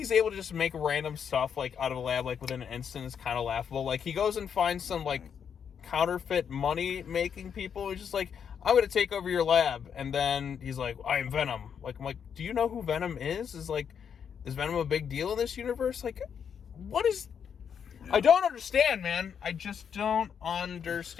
able to just make random stuff, like, out of a lab, like, within an instant is kind of laughable. Like, he goes and finds some, like, counterfeit money-making people. He's just like, I'm going to take over your lab. And then he's like, I am Venom. Like, I'm like, do you know who Venom is? Is Venom a big deal in this universe? Like, what is... I don't understand, man. I just don't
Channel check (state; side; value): quieter; right; 7.5 dB